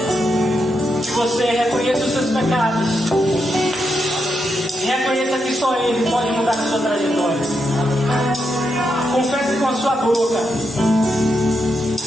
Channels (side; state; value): both; normal; correlation 0.83